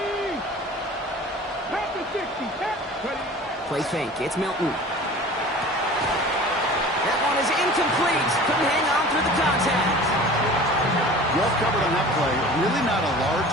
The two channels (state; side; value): normal; both; correlation 0.41